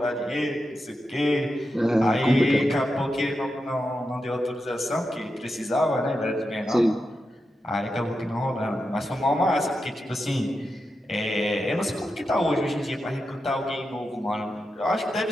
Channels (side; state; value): both; normal; correlation 0.88